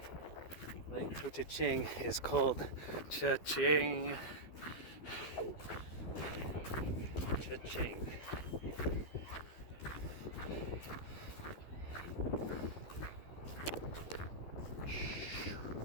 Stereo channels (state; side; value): late; right; 12 ms